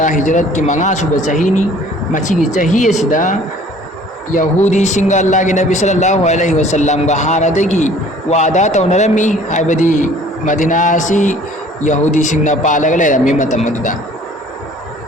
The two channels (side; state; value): both; normal; correlation 0.53